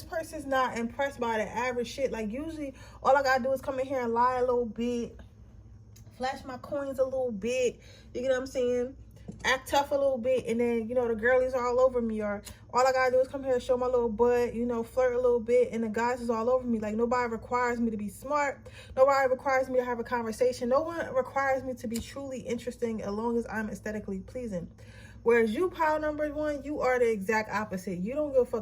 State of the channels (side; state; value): both; identical; correlation 1.00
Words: person's not impressed by the average shit. Like usually all I gotta do is come in here and lie a little bit, flash my coins a little bit, you get what I'm saying? Act tough a little bit, and then, you know, the girlies are all over me, or all I gotta do is come here and show my little butt, you know, flirt a little bit, and the guys is all over me. Like nobody requires me to be smart, nobody requires me to have a conversation, no one requires me to be truly interesting as long as I'm aesthetically pleasing. Whereas you, pile number one, you are the exact opposite. You don't give a